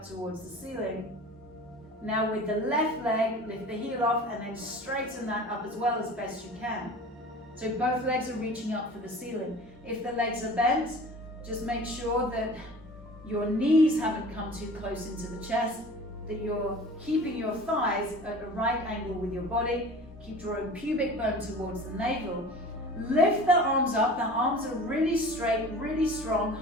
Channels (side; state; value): both; normal; correlation 0.40